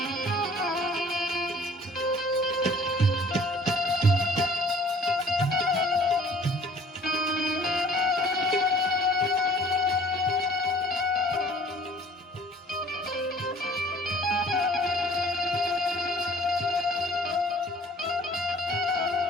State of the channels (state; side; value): normal; both; correlation 0.53